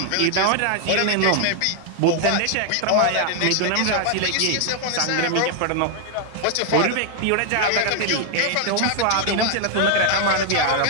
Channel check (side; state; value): both; different; correlation 0.00